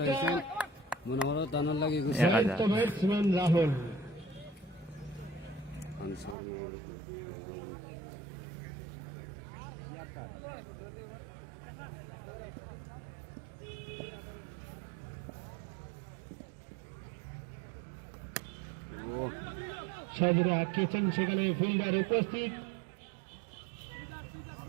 মনে করো তার লগে শান্ত ব্যাটসম্যান রাহুল। আনসার সাজরা আটকেছেন, সেখানে ফিল্ডার উপস্থিত।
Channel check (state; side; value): drops out; left; at 6.4 s